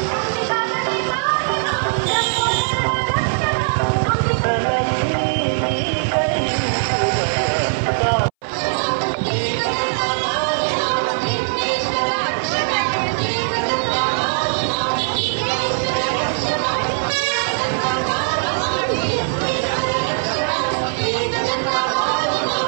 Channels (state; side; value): silent; left; 63 dB below the other